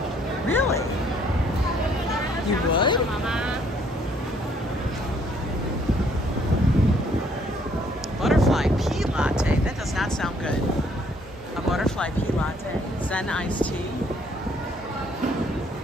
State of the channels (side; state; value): both; normal; correlation 0.65